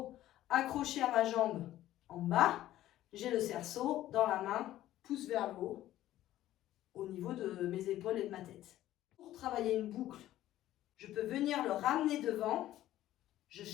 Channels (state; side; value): quieter; right; 13.9 dB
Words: accroché à ma jambe en bas, j'ai le cerceau dans la main, pouce vers le haut, au niveau de mes épaules et de ma tête. Pour travailler une boucle, je peux venir le ramener devant. Je